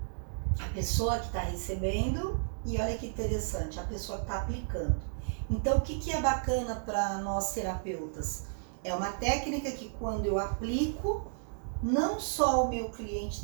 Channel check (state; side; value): silent; left; digital silence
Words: a pessoa que está recebendo e olha que interessante, a pessoa que está aplicando. Então, o que é bacana para nós terapeutas? É uma técnica que quando eu aplico, não só o meu cliente